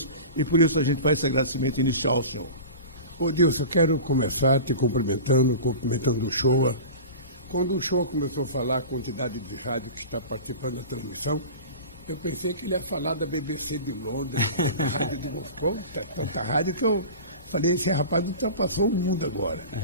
e por isso a gente faz esse agradecimento inicial ao senhor. Ô Dilson, eu quero começar te cumprimentando o Uchoa. Quando o Uchoa começou a falar a quantidade de rádio que está participando da transmissão, eu pensei que ele ia falar da BBC de Londres, da rádio de Moscou, tanta rádio que eu falei, esse rapaz ultrapassou o mundo agora.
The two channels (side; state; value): both; inverted; correlation -0.34